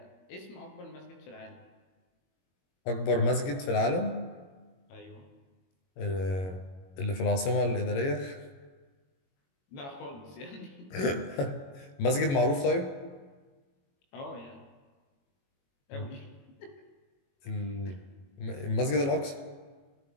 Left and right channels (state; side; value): late; right; 22 ms